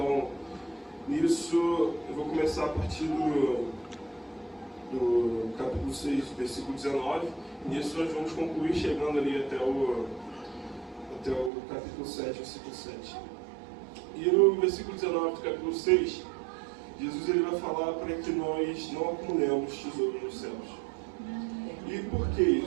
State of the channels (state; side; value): drops out; left; at 11.5 s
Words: nisso, eu vou começar a partir do capítulo 6, versículo 19. Nisso nós vamos concluir chegando ali até o capítulo 7, versículo 7. E no versículo 19 do capítulo 6, Jesus ele vai falar para que nós não acumulemos tesouro nos céus. E por que